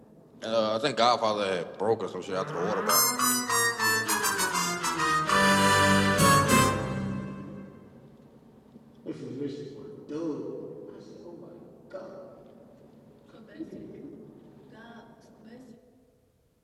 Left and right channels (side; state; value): both; identical; correlation 1.00